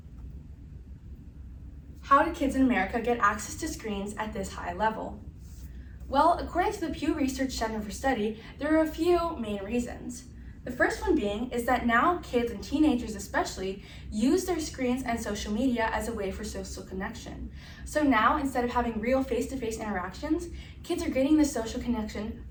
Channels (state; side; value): identical; both; correlation 1.00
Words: how did kids in America get access to screens at this high level? Well, according to the Pew Research Center for Study, there are a few main reasons. The first one being is that now kids and teenagers especially use their screens and social media as a way for social connection. So now, instead of having real face-to-face interactions, kids are getting the social connection